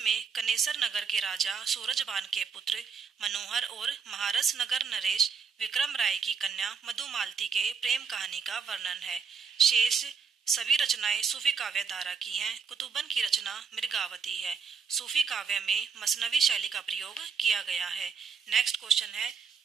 कनेसर नगर के राजा सूरजबान के पुत्र मनोहर और महारस नगर नरेश विक्रम राय की कन्या मधुमालती के प्रेम कहानी का वर्णन है। शेष सभी रचनाएं सूफी काव्य धारा की हैं। कुतुब्बन की रचना मृगावती है। सूफी काव्य में मसनवी शैली का प्रयोग किया गया है। नेक्स्ट क्वेश्चन है,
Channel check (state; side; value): quieter; left; 5.9 dB